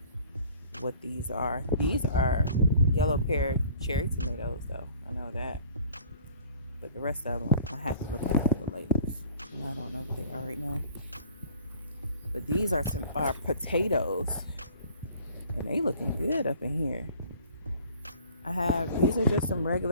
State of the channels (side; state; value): both; inverted; correlation -0.51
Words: what these are. These are yellow pear cherry tomatoes, though. I know that. But the rest of them, I have to look at the labels. And I don't know what they are right now. But these are potatoes. And they looking good up in here. These are just some